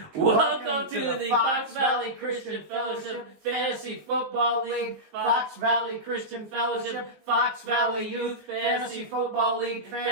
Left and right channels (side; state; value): left; late; 19 ms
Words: Welcome to the Fox Valley Christian Fellowship Fantasy Football League, Fox Valley Christian Fellowship, Fox Valley Youth Fantasy Football League,